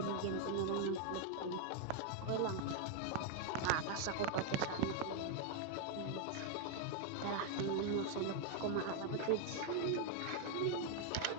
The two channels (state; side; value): different; both; correlation 0.00